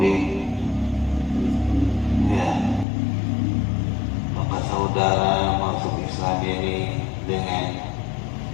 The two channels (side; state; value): right; drops out; at 2.9 s